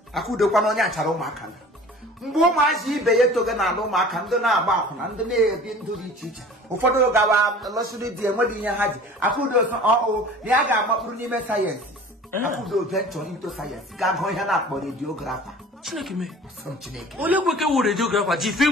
I could have one on your mark. Mboma si beye to na no maka ndo na agba akwuna ndo na ebi ndo di chichi ụfọdụ gawa lọsiri di enwedi ihe haji akudo so na aga agbapụrụ n'ime science akudo venture into science ga go ihe na akpọ radiographer Chineke me some Chineke ole kweke wu radiographer ji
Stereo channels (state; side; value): normal; both; correlation 0.44